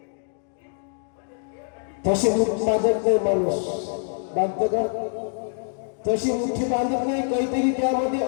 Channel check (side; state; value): right; silent; digital silence